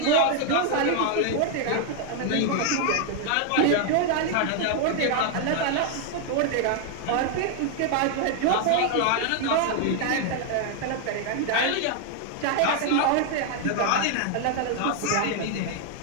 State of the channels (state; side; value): different; both; correlation 0.00